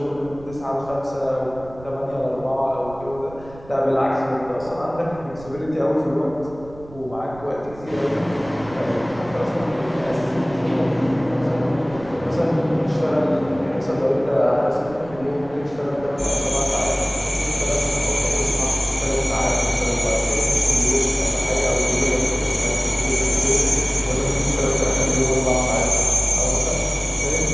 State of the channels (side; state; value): right; noise; rumble, 18 dB below the sound